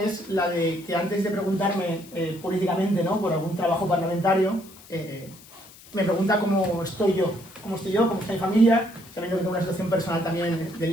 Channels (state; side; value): noise; left; hiss, 21 dB below the sound